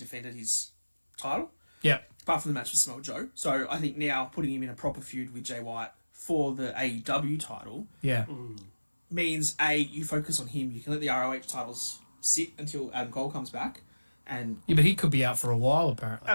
his title, Yeah. apart from the match with Samoa Joe. So I think now putting him in a proper feud with Jay White for the AEW title Yeah. means you focus on him. You can let the ROH titles sit until Adam Cole comes back, and Yeah, but he could be out for a while, apparently.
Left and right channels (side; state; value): both; inverted; correlation -1.00